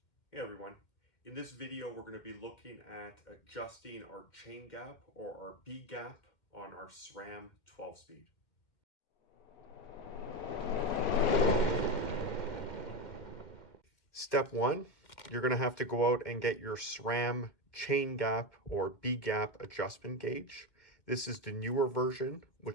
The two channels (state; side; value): late; right; 2.2 ms